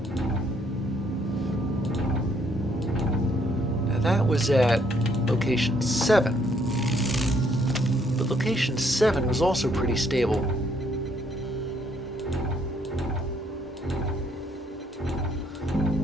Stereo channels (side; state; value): both; normal; correlation 0.69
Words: Now that was at location 7. But location 7 was also pretty stable.